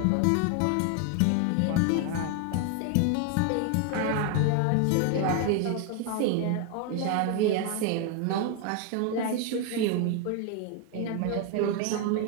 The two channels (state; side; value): different; both; correlation 0.01